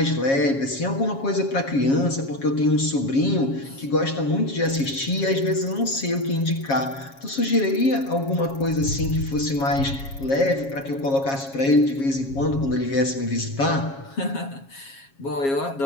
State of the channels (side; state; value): right; late; 7.3 ms